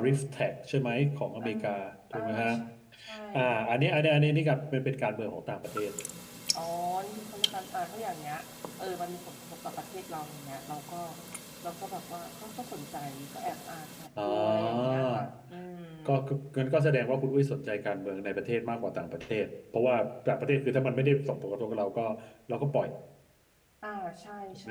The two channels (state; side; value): identical; both; correlation 1.00